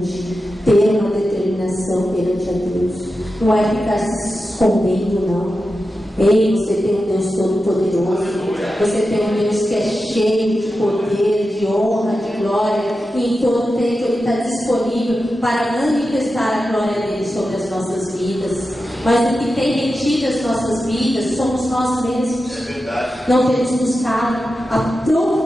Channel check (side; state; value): both; normal; correlation 0.91